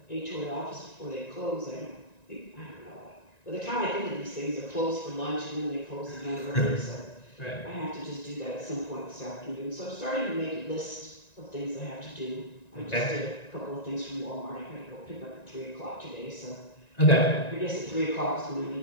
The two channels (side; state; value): right; late; 1.9 ms